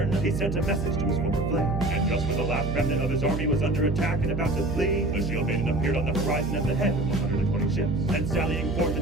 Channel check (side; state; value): right; noise; hum, 2 dB below the sound